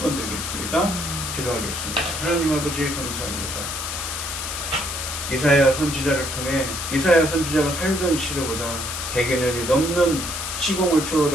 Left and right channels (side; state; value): left; noise; hiss, 5 dB below the sound